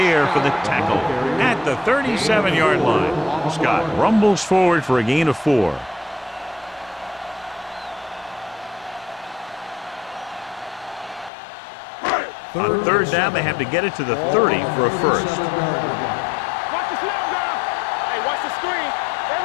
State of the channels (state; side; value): drops out; right; at 11.3 s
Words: for the tackle at the 37-yard line. Scott rumbles forward for a gain of 4. On third down, they have to get it to the 30 for a first. Watch the slam down. Hey, watch the screen.